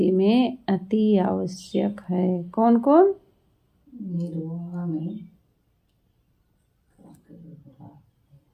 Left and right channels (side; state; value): both; identical; correlation 1.00